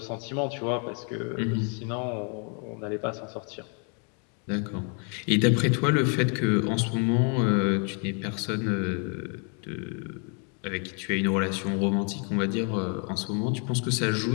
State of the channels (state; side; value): quieter; right; 38.9 dB